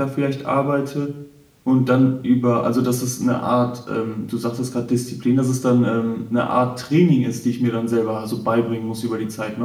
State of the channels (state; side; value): identical; both; correlation 1.00